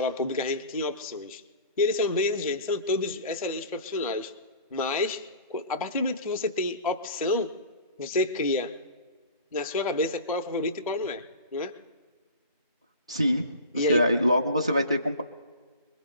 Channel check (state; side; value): inverted; both; correlation -0.37